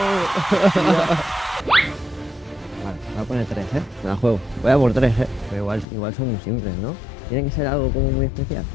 Vale, voy a poner 3, ¿eh? Me la juego. Voy a por 3, ¿eh? Pero igual son muy simples, ¿no? Tiene que ser algo como muy especial.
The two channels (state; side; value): drops out; right; at 5.9 s